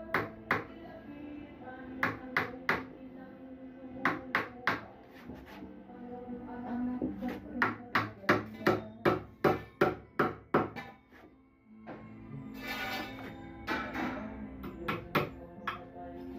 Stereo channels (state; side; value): identical; both; correlation 1.00